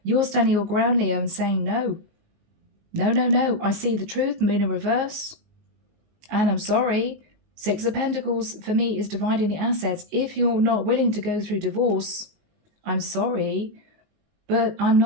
you're standing your ground, Leo, and saying no. No, no, no. I see the truth, moon in reverse. And I'm sorry. Six of Pentacles for me is dividing the assets. If you're not willing to go through divorce, I'm sorry, but I'm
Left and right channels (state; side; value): late; left; 19 ms